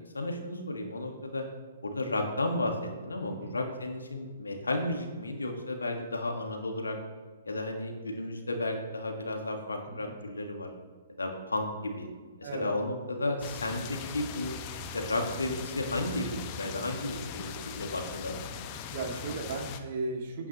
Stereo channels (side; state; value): both; inverted; correlation -0.68